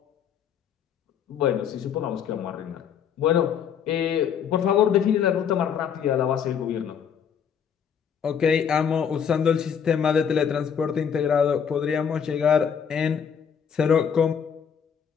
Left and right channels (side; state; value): right; quieter; 7.6 dB